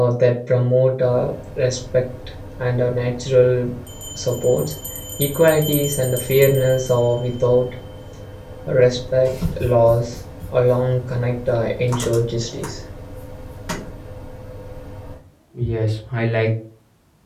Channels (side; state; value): both; identical; correlation 1.00